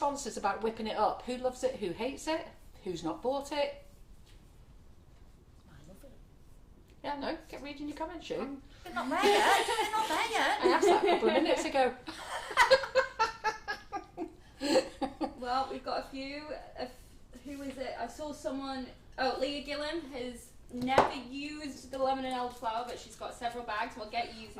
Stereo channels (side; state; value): both; identical; correlation 1.00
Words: about whipping it up? Who loves it? Who hates it? Who's not bought it? I love it. Yeah, no, get reading your comments, Sue. They're not there yet. They're not there yet. I asked that a couple of minutes ago. Well, we've got a few. Who is it? I saw someone. Oh, Leah Gillen has never used the lemon and elderflower, but she's got several bags. We'll get